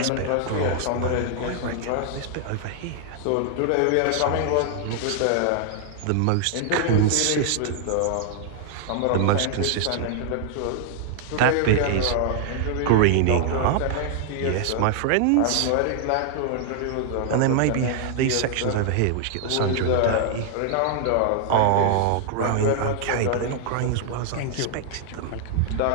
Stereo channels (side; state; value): both; different; correlation 0.00